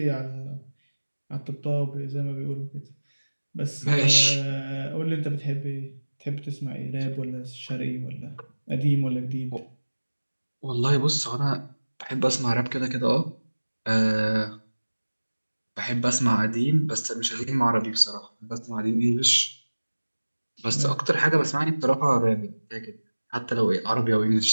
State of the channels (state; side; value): inverted; both; correlation -1.00